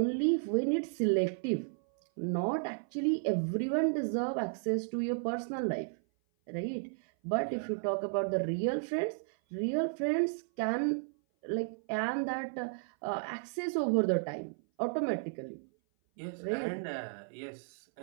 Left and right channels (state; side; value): silent; left; 55 dB below the other